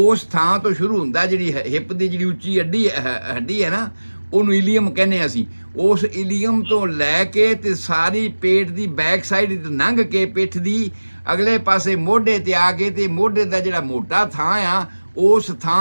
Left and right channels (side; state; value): both; inverted; correlation -1.00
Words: ਥਾਂ ਤੋਂ ਸ਼ੁਰੂ ਹੁੰਦਾ। ਜਿਹੜੀ ਹਿੱਪ ਦੀ ਜਿਹੜੀ ਉੱਚੀ ਹੱਡੀ ਹੈ ਨਾ, ਉਹਨੂੰ ਇਲੀਅਮ ਕਹਿੰਦੇ ਅਸੀਂ। ਉਸ ਇਲੀਅਮ ਤੋਂ ਲੈ ਕੇ ਤੇ ਸਾਰੀ ਪੇਟ ਦੀ ਬੈਕ ਸਾਈਡ ਲੰਘ ਕੇ ਪਿੱਠ ਦੀ ਅਗਲੇ ਪਾਸੇ ਮੋਢੇ ਤੇ ਆ ਕੇ, ਤੇ ਮੋਢੇ ਦਾ ਜਿਹੜਾ ਮੋਟਾ ਥਾਂ ਆ ਉਸ